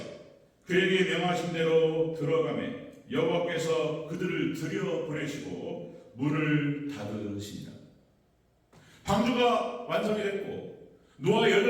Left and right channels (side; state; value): both; identical; correlation 1.00